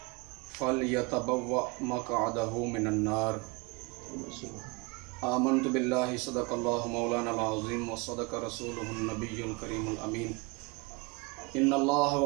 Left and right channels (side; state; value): left; quieter; 27.8 dB